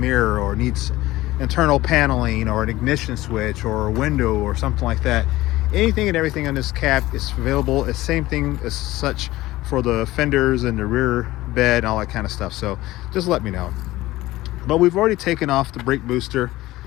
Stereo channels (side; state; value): right; quieter; 17.4 dB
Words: or needs internal paneling or an ignition switch or a window or something like that. Anything and everything on this cab is available. It's same thing as such for the fenders and the rear bed and all that kind of stuff. So just let me know. But we've already taken off the brake booster.